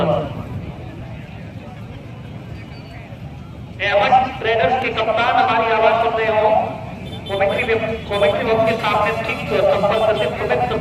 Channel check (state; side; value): identical; both; correlation 1.00